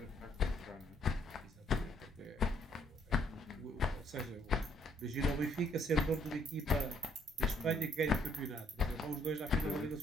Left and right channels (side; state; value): both; normal; correlation 0.67